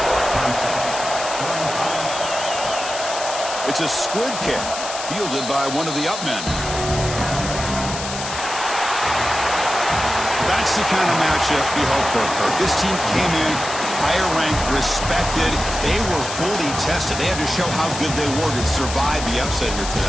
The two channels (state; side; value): noise; left; hiss, 7 dB below the sound